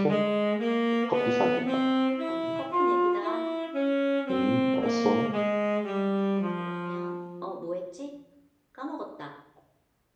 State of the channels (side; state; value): both; identical; correlation 1.00